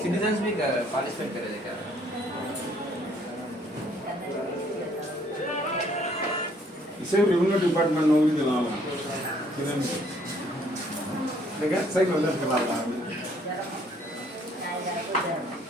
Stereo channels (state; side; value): normal; both; correlation 0.63